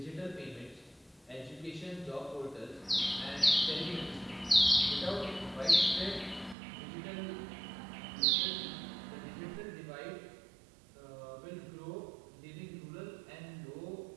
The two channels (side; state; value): left; drops out; at 6.6 s